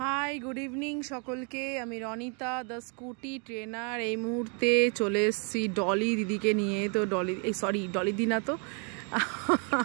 Hi good evening সকলকে। আমি Ronita the scooty trainer. এই মুহূর্তে চলে এসেছি ডলি দিদিকে নিয়ে। তো ডলি দি না, তো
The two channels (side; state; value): left; quieter; 37.2 dB